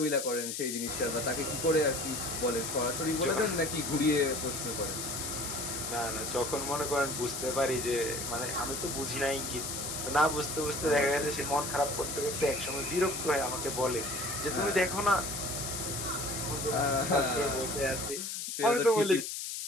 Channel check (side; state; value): left; noise; hiss, 4 dB below the sound